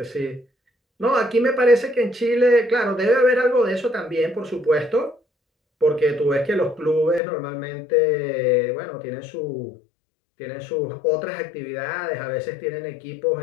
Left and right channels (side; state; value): right; drops out; at 7.2 s